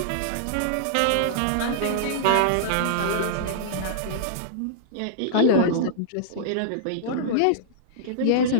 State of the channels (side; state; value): both; different; correlation -0.02